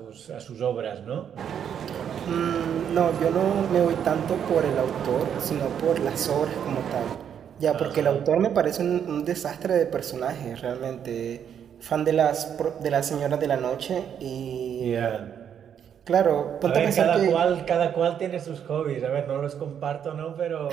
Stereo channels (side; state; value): left; quieter; 8.6 dB